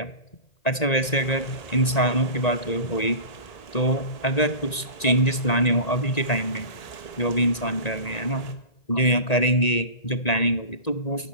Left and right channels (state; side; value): late; right; 1.9 ms